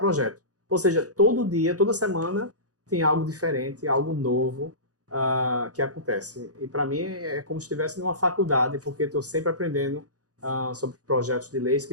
Ou seja, todo dia, toda semana, tem algo diferente, algo novo que acontece. E para mim é como se estivesse numa faculdade, porque estou sempre aprendendo sobre projetos de leis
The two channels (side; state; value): left; late; 0.67 ms